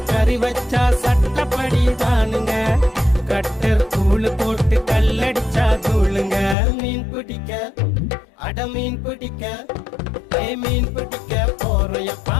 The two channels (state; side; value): drops out; right; at 6.6 s